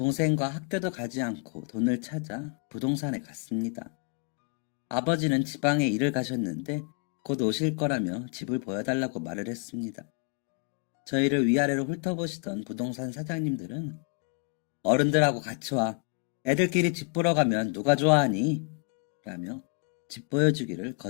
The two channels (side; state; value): right; quieter; 37.6 dB